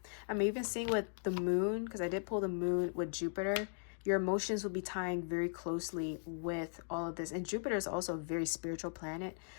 I'm even seeing with the moon, because I did pull the moon with Jupiter, your emotions will be tying very closely with all of this. And Jupiter is also a very spiritual planet.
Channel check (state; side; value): silent; right; digital silence